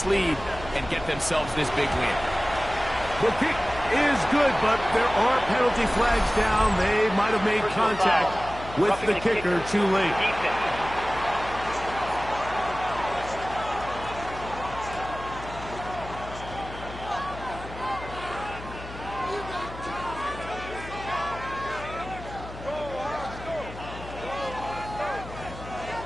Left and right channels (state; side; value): noise; left; hum, 13 dB below the sound